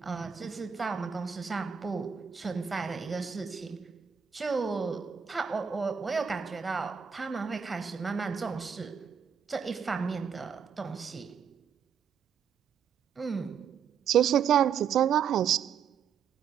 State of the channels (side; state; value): left; quieter; 7.2 dB